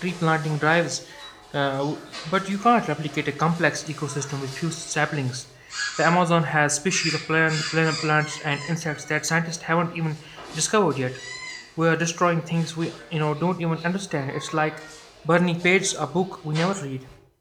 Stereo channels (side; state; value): both; identical; correlation 1.00